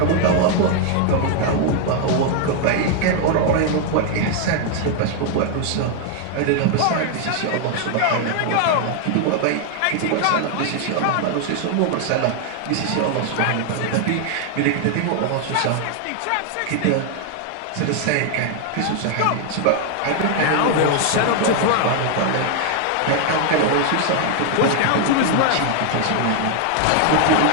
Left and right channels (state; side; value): different; both; correlation 0.00